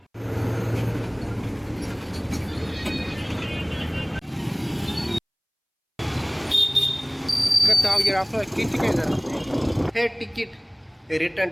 आपलं किती काय झालं? हे तिकीट रिटर्न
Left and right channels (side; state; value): both; identical; correlation 1.00